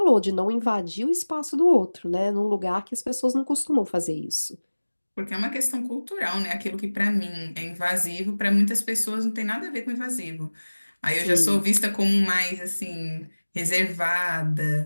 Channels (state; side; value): inverted; both; correlation -1.00